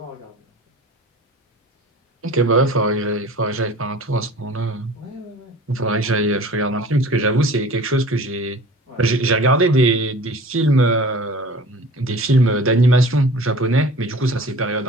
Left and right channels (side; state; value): both; normal; correlation 0.42